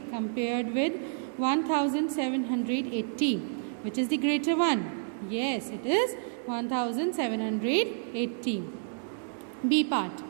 compared with 1780, which is the greater one? Yes, it is 1780. B part,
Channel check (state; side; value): silent; left; digital silence